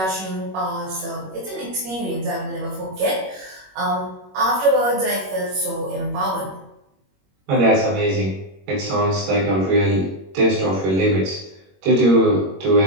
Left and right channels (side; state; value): left; late; 21 ms